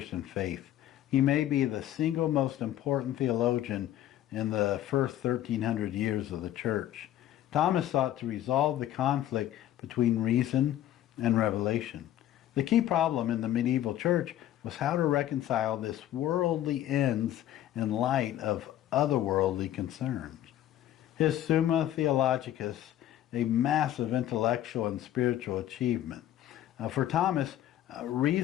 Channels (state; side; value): quieter; right; 12.4 dB